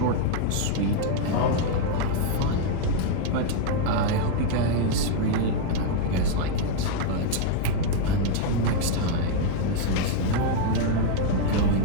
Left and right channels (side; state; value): both; different; correlation 0.00